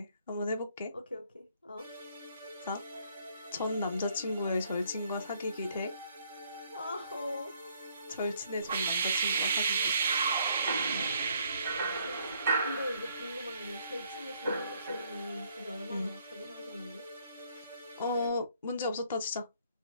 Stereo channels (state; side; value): inverted; both; correlation -0.67